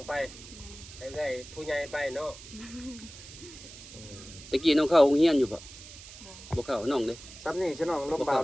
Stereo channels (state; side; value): noise; right; hiss, 16 dB below the sound